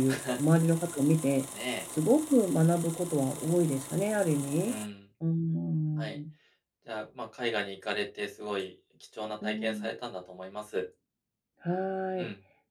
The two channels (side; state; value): both; identical; correlation 1.00